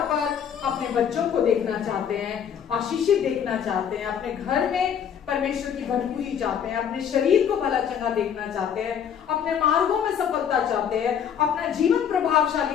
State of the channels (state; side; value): quieter; right; 8.3 dB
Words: पर अपने बच्चों को देखना चाहते हैं, आशीषित देखना चाहते हैं, अपने घर में परमेश्वर की भरपूरी चाहते हैं, अपने शरीर को भला चंगा देखना चाहते हैं, अपने मार्गों में सफलता चाहते हैं, अपना जीवन